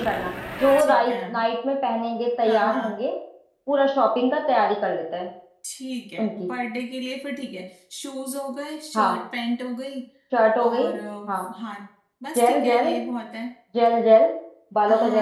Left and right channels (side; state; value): both; identical; correlation 1.00